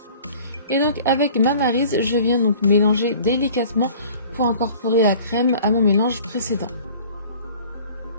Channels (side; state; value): both; inverted; correlation -0.47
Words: Et donc avec ma maryse, je viens donc mélanger délicatement pour incorporer la crème à mon mélange précédent.